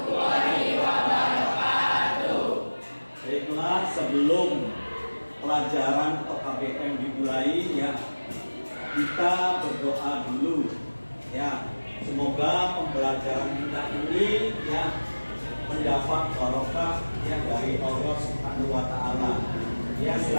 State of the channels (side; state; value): both; inverted; correlation -1.00